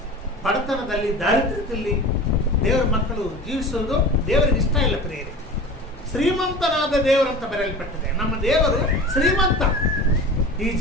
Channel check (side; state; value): both; normal; correlation 0.36